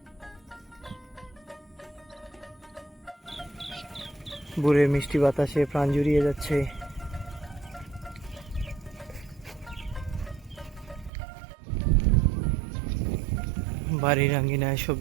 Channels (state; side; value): drops out; left; at 11.1 s